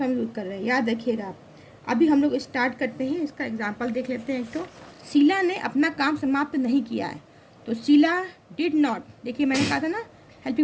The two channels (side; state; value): both; identical; correlation 1.00